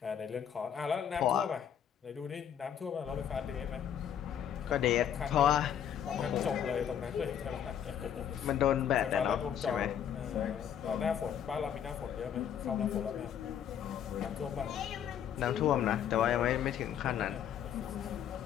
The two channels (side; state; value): right; quieter; 9.2 dB